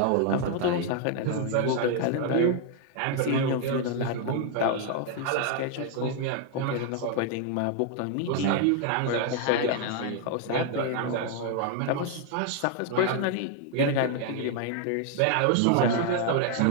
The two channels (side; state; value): both; different; correlation 0.00